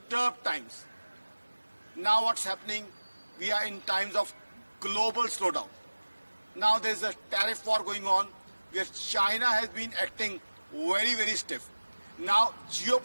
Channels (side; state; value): both; inverted; correlation -1.00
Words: times. Now what's happening? We are in times of global slowdown. Now there's a tariff war going on where China has been acting very, very stiff. Now